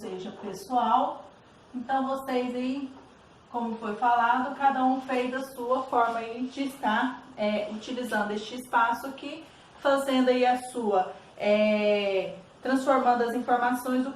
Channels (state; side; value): identical; both; correlation 1.00